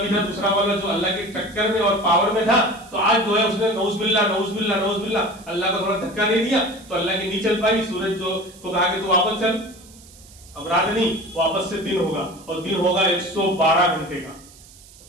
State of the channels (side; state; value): right; noise; hiss, 23 dB below the sound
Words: تھا دوسرا والا جو اللہ کے ٹکر میں اور پاور میں تھا، تو آج جو ہے اس نے نعوذ باللہ نعوذ باللہ نعوذ باللہ اللہ کو تھوڑا دھکا دے دیا، تو اللہ کی نہیں چل پائی، سورج جو کو کہا کہ تو واپس چل، اب رات نہیں، واپس سے دن ہوگا، اور دن ہوگا 112 گھنٹے کا۔